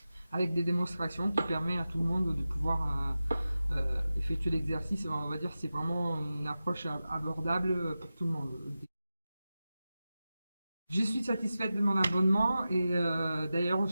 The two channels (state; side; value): inverted; both; correlation -0.93